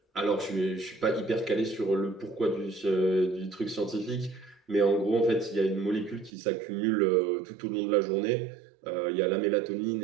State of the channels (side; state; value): left; drops out; at 6.3 s